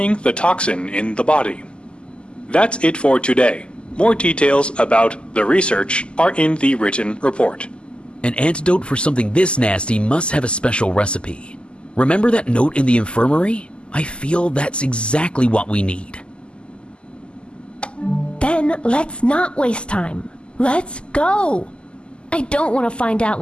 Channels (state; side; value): late; right; 0.051 ms